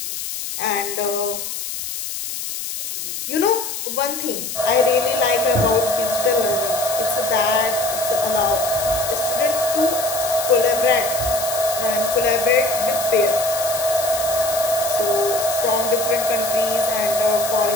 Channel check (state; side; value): noise; left; hiss, 6 dB below the sound